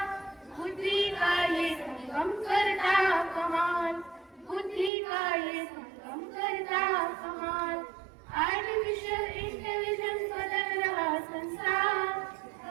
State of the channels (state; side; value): drops out; left; at 4.9 s